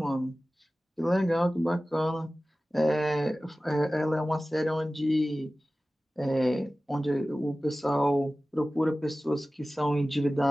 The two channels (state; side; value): normal; both; correlation 0.96